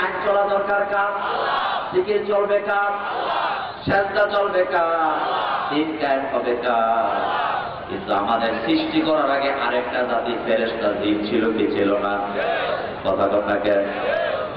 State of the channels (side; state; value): both; identical; correlation 1.00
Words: আইন চলা দরকার কার? জিকির চলবে কার? সেজদা চলবে কার? দিন কায়েম হবে কার? কিন্তু আমাদের সৃষ্টি করার আগে আরেকটা জাতি ফেরেশতা জিন ছিল কি ছিল না? কথা কথা কেন?